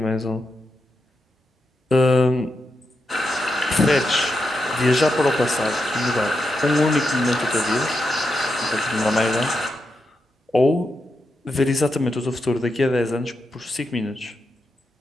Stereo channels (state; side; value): normal; both; correlation 0.86